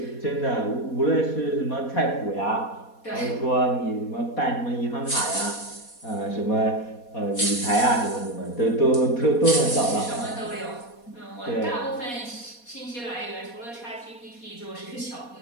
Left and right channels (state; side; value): late; right; 4.2 ms